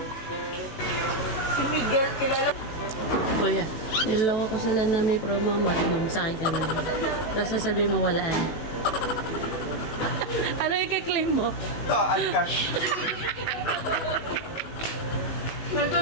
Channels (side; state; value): right; late; 18 ms